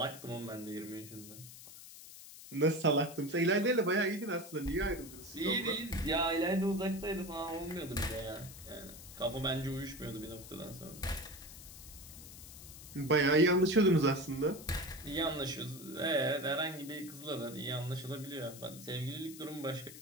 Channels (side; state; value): left; noise; hiss, 15 dB below the sound